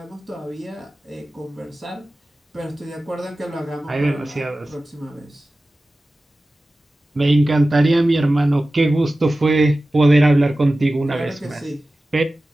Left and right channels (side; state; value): both; normal; correlation 0.96